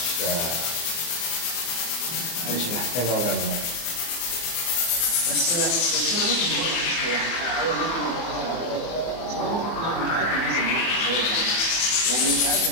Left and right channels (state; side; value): late; right; 24 ms